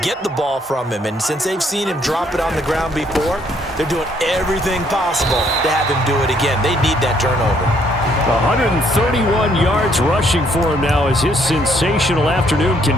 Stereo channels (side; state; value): both; normal; correlation 0.68